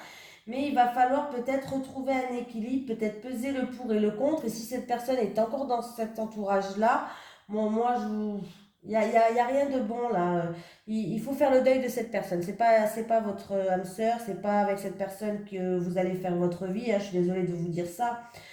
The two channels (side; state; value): both; identical; correlation 1.00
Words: Mais il va falloir peut-être retrouver un équilibre, peut-être peser le pour et le contre. Et si cette personne est encore dans cet entourage-là, bon, moi, il n'y a rien de bon là. Il faut faire le deuil de cette personne. C'est pas votre âme sœur, c'est pas avec cette personne que vous allez faire votre vie, hein. Je suis désolée de vous dire ça.